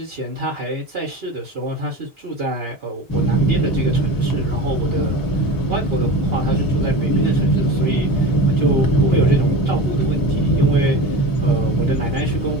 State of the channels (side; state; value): both; normal; correlation 0.31